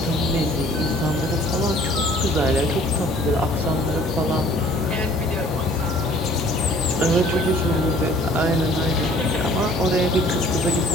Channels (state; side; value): normal; both; correlation 0.54